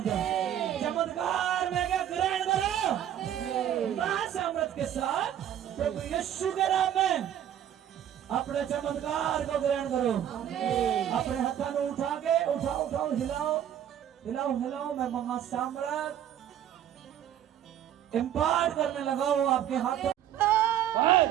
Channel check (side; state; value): left; quieter; 10.6 dB